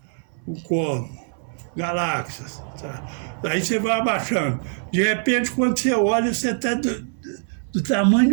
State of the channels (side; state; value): left; silent; 60 dB below the other